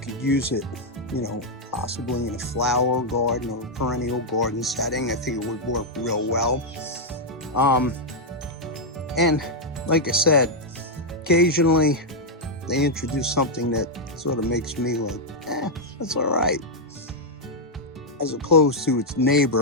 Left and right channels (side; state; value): both; normal; correlation -0.03